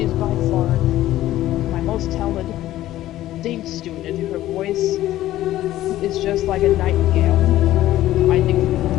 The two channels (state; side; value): quieter; right; 14.4 dB